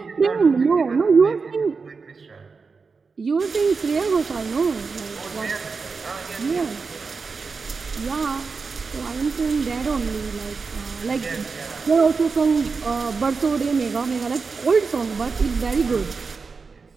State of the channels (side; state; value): left; quieter; 4.8 dB